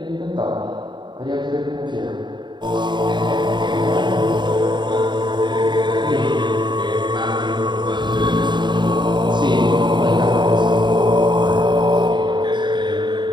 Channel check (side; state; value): left; late; 0.22 ms